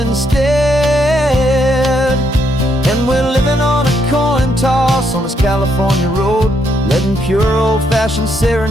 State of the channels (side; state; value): both; normal; correlation 0.75